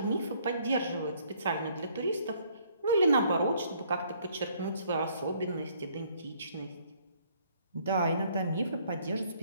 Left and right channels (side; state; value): both; inverted; correlation -0.64